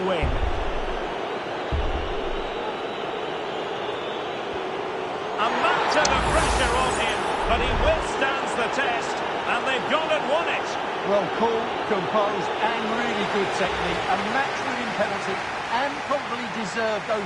win. A mountain of pressure on him, but he withstands the test, and they've gone and won it. Well, cool, composed, and really good technique. A match-winning penalty, and probably deserved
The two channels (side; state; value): both; identical; correlation 1.00